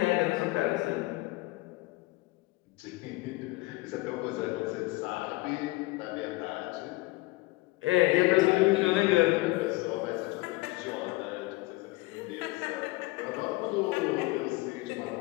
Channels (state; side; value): quieter; right; 20.8 dB